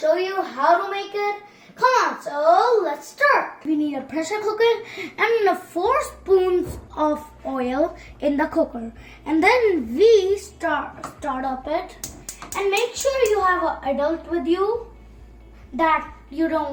you how to make it. Come on, so let's start. We need a pressure cooker and 4 spoons of oil in the cooker. And then we start up it. And make sure you have an adult with you that you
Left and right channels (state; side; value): identical; both; correlation 1.00